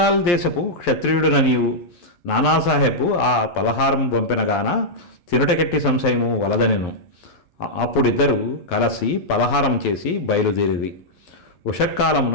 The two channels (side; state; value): right; late; 11 ms